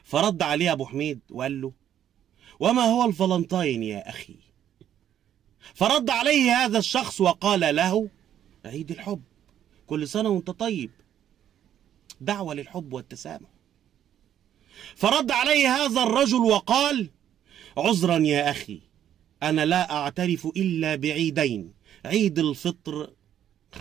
فرد عليه أبو حميد وقال له: وما هو الفالنتاين يا أخي؟ فرد عليه هذا الشخص وقال له: عيد الحب، كل سنة وانت طيب، دعوة للحب والتسامح. فرد عليه هذا الرجل وقال: عذرا يا أخي، أنا لا أعترف إلا بعيدين، عيد الفطر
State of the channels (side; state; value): left; quieter; 10.4 dB